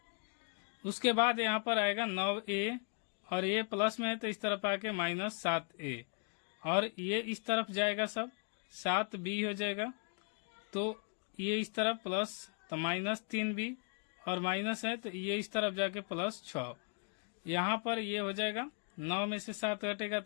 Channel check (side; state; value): right; quieter; 39.7 dB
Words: उसके बाद यहाँ पर आएगा 9a और ये प्लस में है तो इस तरफ आके माइनस 7a और ये इस तरफ जाएगा सब 7b हो जाएगा। तो ये इस तरफ प्लस तो माइनस 3b और माइनस है तो ये इस तरफ जाके प्लस 6। यहाँ पर ये हो जाएगा 9 में से 7 घटेगा